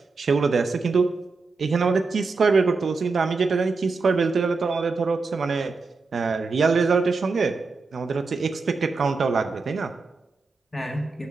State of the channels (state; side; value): quieter; left; 4.2 dB